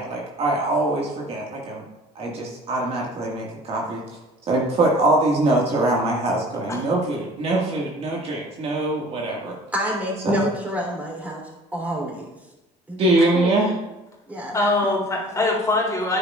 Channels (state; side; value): normal; both; correlation 0.47